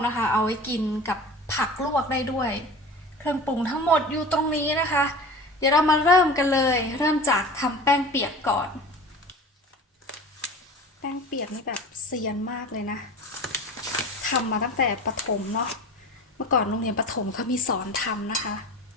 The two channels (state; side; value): normal; both; correlation 0.37